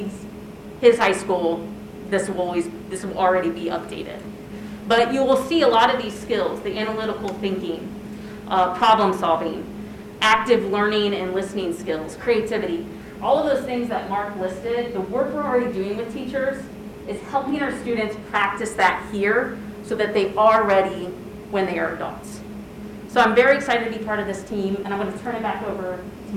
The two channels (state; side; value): identical; both; correlation 1.00